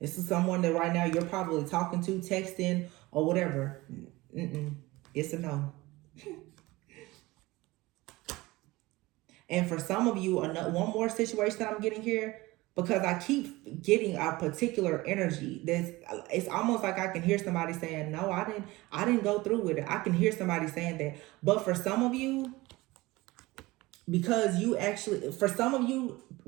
is someone that right now you're probably talking to, texting, or whatever. It's a no. And for some of you, one more situation that I'm getting here, because I keep getting a particular energy. It's almost like I can hear somebody saying, no, I didn't go through with it. I can hear somebody saying that. But for some of you, because for some of you,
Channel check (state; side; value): quieter; left; 20.5 dB